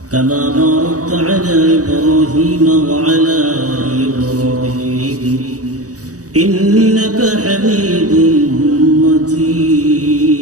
كما باركت على إبراهيم وعلى آل إبراهيم إنك حميد مجيد.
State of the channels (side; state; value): left; late; 0.66 ms